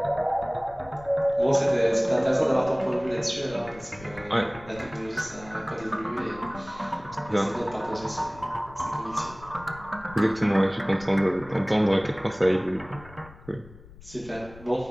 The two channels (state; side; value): noise; left; rumble, 20 dB below the sound